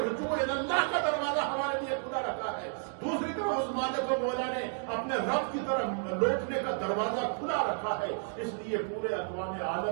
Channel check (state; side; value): silent; left; 57 dB below the other